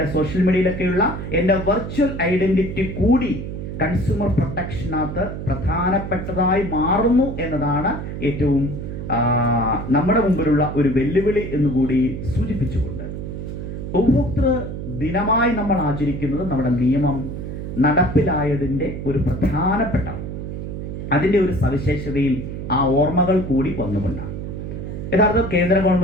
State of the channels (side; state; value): right; noise; hum, 7 dB below the sound